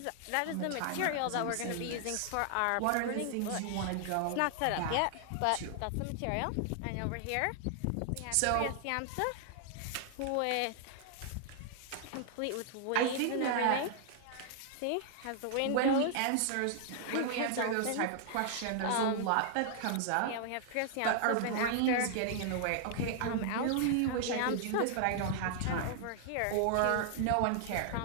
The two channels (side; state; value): both; different; correlation 0.00